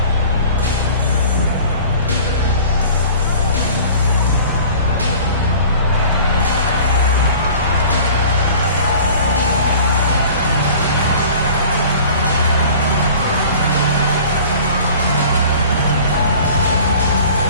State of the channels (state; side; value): inverted; both; correlation -0.44